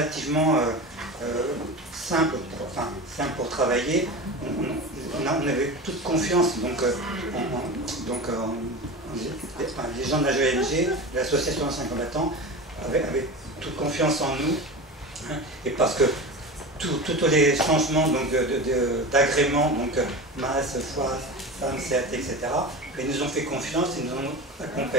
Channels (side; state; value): both; normal; correlation 0.28